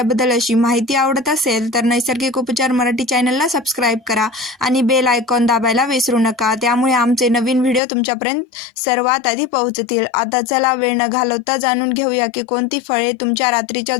अशी माहिती आवडत असेल तर नैसर्गिक उपचार मराठी चॅनलला सबस्क्राईब करा आणि बेल आयकॉन दाबायला विसरू नका. त्यामुळे आमचे नवीन व्हिडिओ तुमच्यापर्यंत सर्वात आधी पोहोचतील. आता चला वेळ न घालवता जाणून घेऊया की कोणती फळे तुमच्या रात्रीच्या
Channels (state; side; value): drops out; right; at 7.8 s